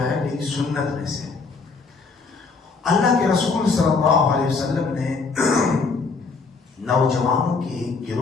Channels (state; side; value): quieter; right; 4.5 dB